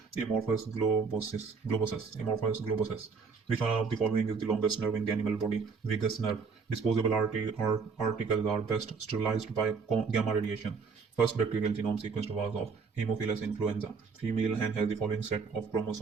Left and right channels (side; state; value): left; quieter; 5.2 dB